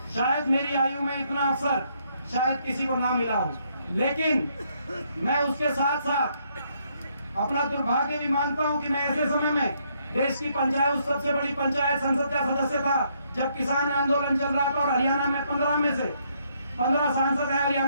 शायद मेरी आयु में इतना अवसर शायद किसी को ना मिला हो, लेकिन मैं उसके साथ साथ अपना दुर्भाग्य भी मानता हूं कि मैं ऐसे समय में देश की पंचायत, सबसे बड़ी पंचायत संसद का सदस्य था जब किसान आंदोलन चल रहा था, और हरियाणा में 15 में से 15 सांसद है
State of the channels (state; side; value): inverted; both; correlation -0.72